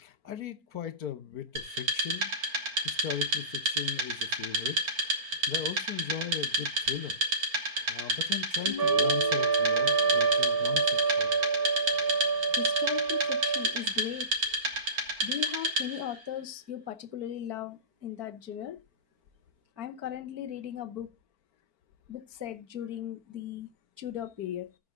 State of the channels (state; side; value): late; left; 4.4 ms